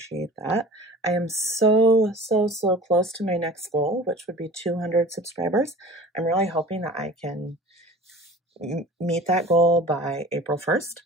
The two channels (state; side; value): normal; both; correlation 0.42